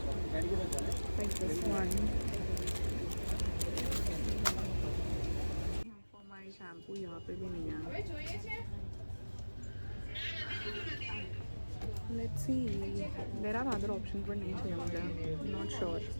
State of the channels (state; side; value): inverted; both; correlation -1.00